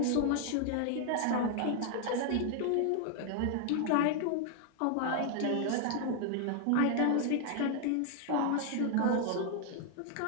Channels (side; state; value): both; different; correlation 0.00